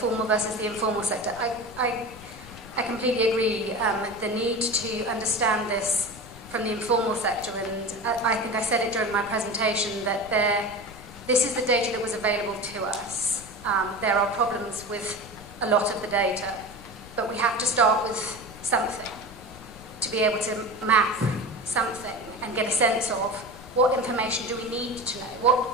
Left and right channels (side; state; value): left; noise; rumble, 18 dB below the sound